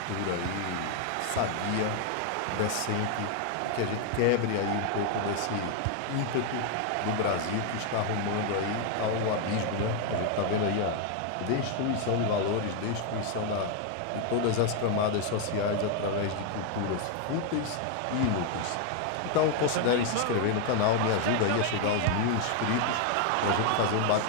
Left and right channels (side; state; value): both; different; correlation 0.01